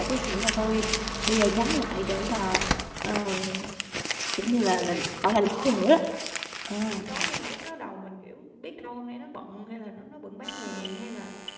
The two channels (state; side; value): identical; both; correlation 1.00